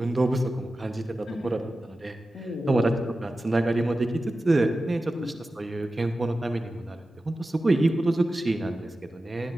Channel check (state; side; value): normal; both; correlation 0.94